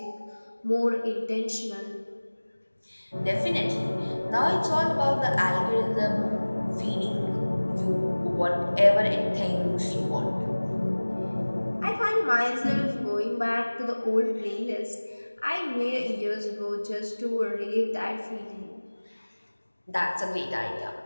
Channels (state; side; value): inverted; both; correlation -1.00